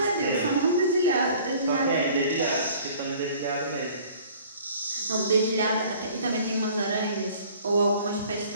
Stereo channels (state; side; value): inverted; both; correlation -0.51